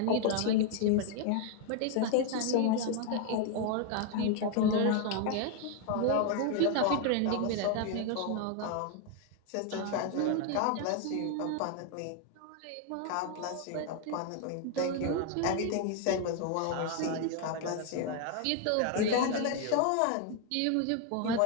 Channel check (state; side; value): different; both; correlation 0.00